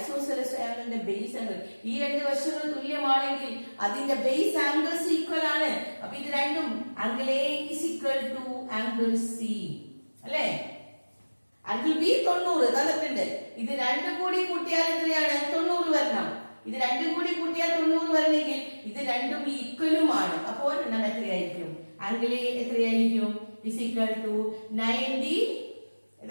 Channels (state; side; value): inverted; both; correlation -1.00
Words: ട്രയാംഗിളിന്റെ ബേസ് ആംഗിൾ. ഈ 2 വശങ്ങൾ തുല്യമാണെങ്കിൽ അതിന്റെ ബേസ് ആംഗിൾസ് ഈക്വൽ ആണ്. അപ്പൊ ഇത് രണ്ടും angle A is equal to angle C അല്ലെ. ആംഗിൾ ബി 90 തന്നിട്ടുണ്ട്. ഇത് 2 കൂടി കൂട്ടിയാൽ എത്രയാണ്? 90 വരണം. ഇത് 2 കൂടി കൂട്ടിയാൽ 90 വരണമെങ്കിൽ ഇത് രണ്ടും ഈക്വലുമാണ്. അപ്പോൾ ഒരെണ്ണം എത്രയായിരിക്കും? ആംഗിൾ എ എത്രയായിരിക്കും? Is equal to 90.